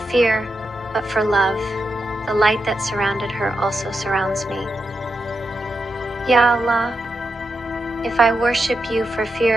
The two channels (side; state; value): both; normal; correlation 0.87